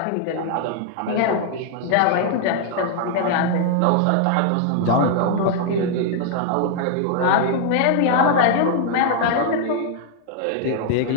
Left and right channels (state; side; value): different; both; correlation 0.00